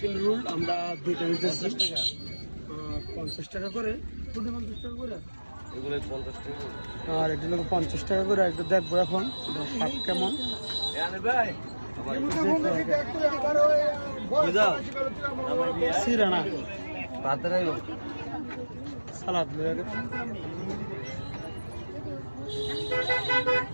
রোল আমরা দুইটা নিতেছি 50 টাকা করে, 50 টাকা করে, এগুলো 50 টাকা আর এটা হলো 50 টাকা করে। একটু দেখবো এখন স্বাদ কেমন। সিরানা সালাদ লয়ে গেছে।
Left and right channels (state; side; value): inverted; both; correlation -1.00